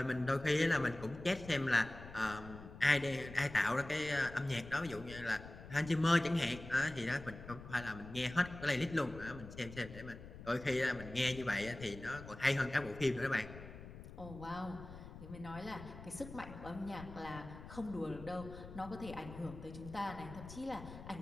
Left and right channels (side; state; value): left; noise; rumble, 14 dB below the sound